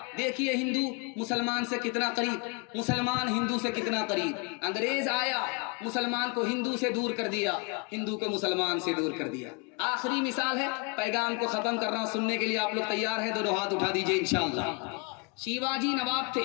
دیکھیے ہندو مسلمان سے کتنا قریب، مسلمان ہندو سے کتنا قریب. انگریز آیا مسلمان کو ہندو سے دور کر دیا، ہندو کو مسلمان سے دور کر دیا. آخری مثال ہے، پیغام کو ختم کر رہا ہوں، سننے کے لیے آپ لوگ تیار ہیں؟ دونوں ہاتھ اٹھا دیجئے انشاءاللہ. شیواجی نواب تھے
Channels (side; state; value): right; quieter; 32.8 dB